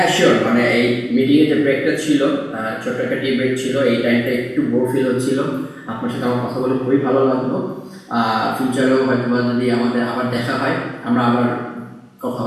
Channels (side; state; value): both; identical; correlation 1.00